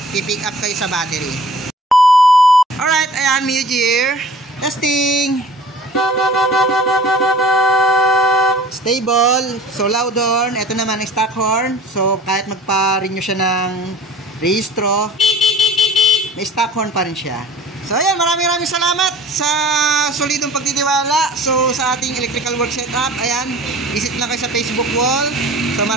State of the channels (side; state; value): both; normal; correlation 0.45